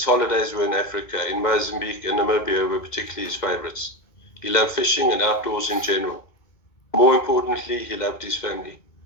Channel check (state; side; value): late; right; 2.2 ms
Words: holidays were in Africa. In Mozambique and Namibia were particularly his favorites. He loved fishing and outdoors in general. More importantly, he loved his family.